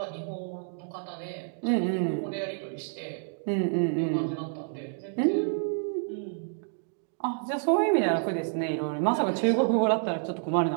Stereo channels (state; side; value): silent; left; digital silence